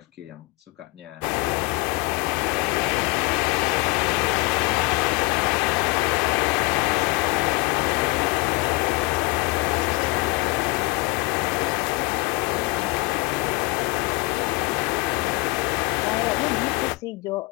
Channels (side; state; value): right; quieter; 24.3 dB